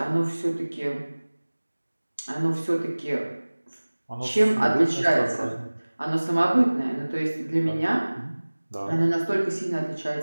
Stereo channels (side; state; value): both; inverted; correlation -1.00